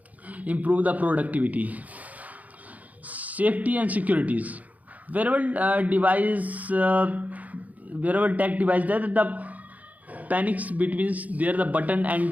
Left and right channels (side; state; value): left; late; 0.075 ms